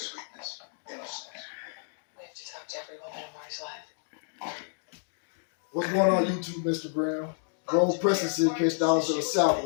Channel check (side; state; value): right; silent; digital silence